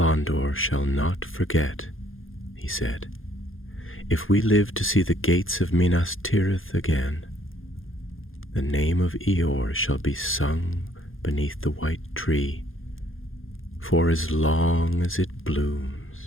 shall not forget," he said. "If we live to see the gates of Minas Tirith again, the name of Eeyore shall be sung beneath the white tree, for as long as it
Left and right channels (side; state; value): right; late; 0.59 ms